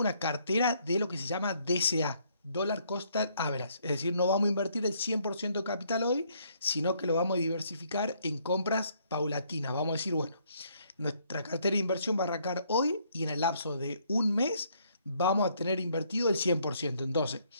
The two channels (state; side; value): inverted; both; correlation -0.68